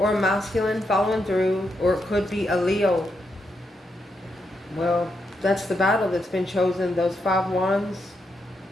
a masculine following through, or it could be a Leo. Well, that's the battle that's been chosen. Those 5 wands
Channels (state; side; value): normal; both; correlation 0.82